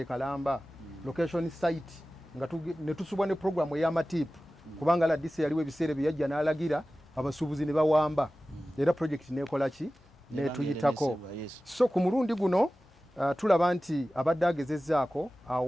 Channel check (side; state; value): both; normal; correlation 0.96